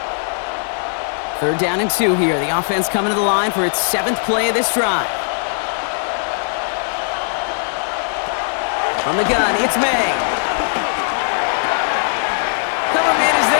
3rd down and 2 here. The offense coming to the line for its 7th play of this drive. From the gun, it's May. Cover man is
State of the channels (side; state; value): right; silent; digital silence